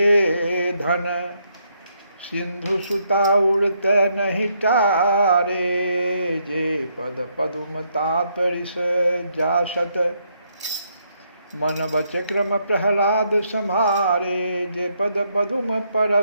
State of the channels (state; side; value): inverted; both; correlation -0.75